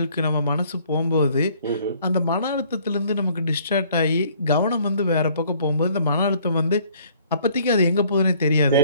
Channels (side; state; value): both; inverted; correlation -0.60